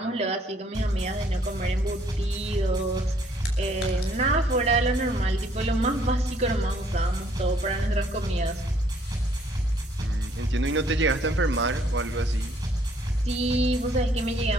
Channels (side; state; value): both; normal; correlation 0.64